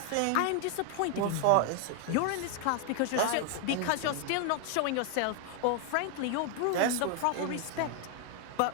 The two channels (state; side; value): different; both; correlation 0.00